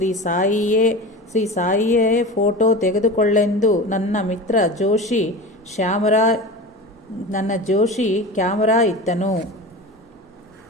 ಸಾಯಿಯೇ ಫೋಟೋ ತೆಗೆದುಕೊಳ್ಳೆಂದು ನನ್ನ ಮಿತ್ರ ಜೋಶಿ ಕ್ಯಾಮರಾ ಇತ್ತನು.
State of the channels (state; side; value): normal; both; correlation 0.31